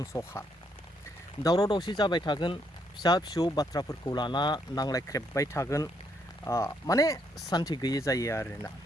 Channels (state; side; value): normal; both; correlation 0.73